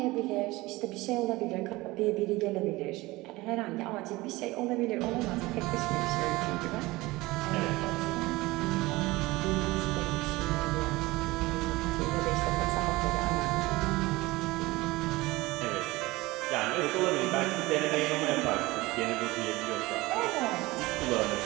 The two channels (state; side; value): quieter; left; 20.5 dB